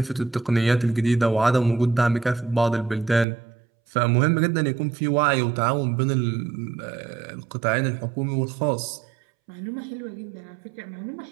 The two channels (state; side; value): drops out; left; at 3.2 s